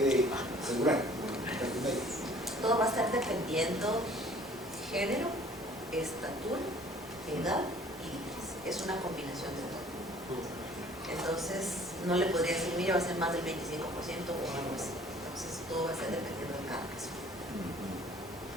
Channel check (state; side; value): normal; both; correlation 0.53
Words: asegurar? Todo va a estar dependiendo género, estatura, edad y límites. Es una combinación de todo. Entonces, no le podría decir, mire, va a ser más del 25% o algo así. Entonces, todo va a ser dependiendo de cada caso.